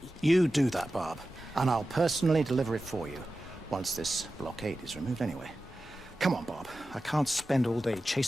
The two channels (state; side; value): normal; both; correlation 0.94